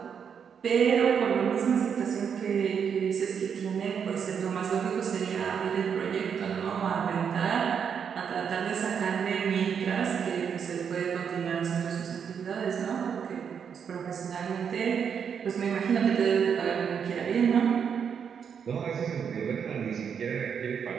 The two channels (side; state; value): left; quieter; 7.3 dB